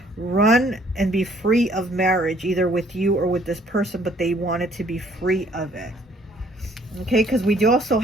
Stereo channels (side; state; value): both; normal; correlation 0.61